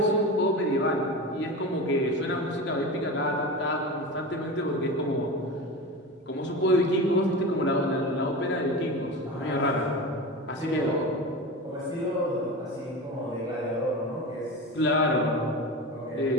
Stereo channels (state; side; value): normal; both; correlation 0.27